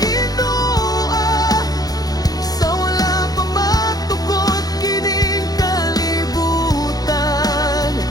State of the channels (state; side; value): late; right; 0.18 ms